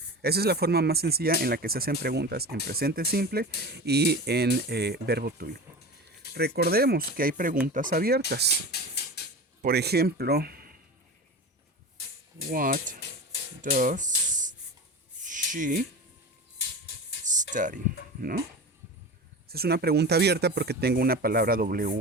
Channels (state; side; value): normal; both; correlation 0.30